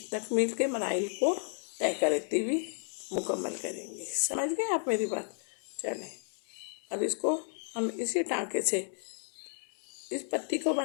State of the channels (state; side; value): silent; right; 56 dB below the other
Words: तकमील के मराइल को तय करती हुई मुकम्मल करेंगे। समझ गए आप मेरी बात? चलें अब इसको हम इसी टाँके से इस पत्ती को